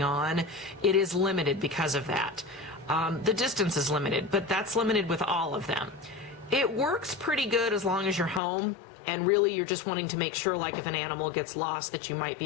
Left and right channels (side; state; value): right; drops out; at 8.4 s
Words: on. It is limited because of that. The distance is limited, but that's limited with all of them. It works pretty good as long as you're home, and really you're just wanting to make sure, like if an animal gets lost, that you might be